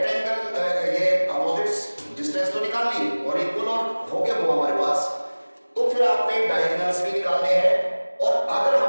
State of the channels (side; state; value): both; inverted; correlation -1.00